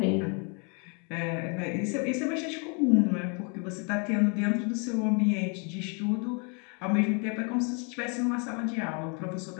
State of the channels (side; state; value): right; quieter; 36.0 dB